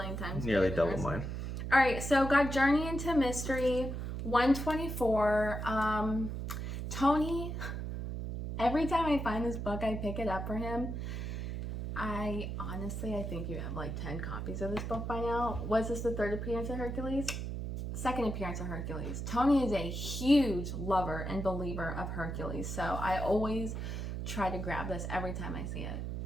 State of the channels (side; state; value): right; noise; hum, 4 dB below the sound